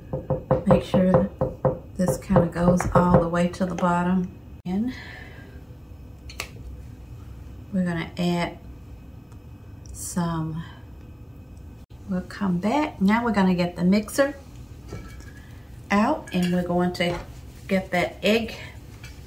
Make sure this kind of goes all the way to the bottom. And we're going to add some, we'll come back. Now we're going to get the mixer out, and we're going to get that egg.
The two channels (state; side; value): identical; both; correlation 1.00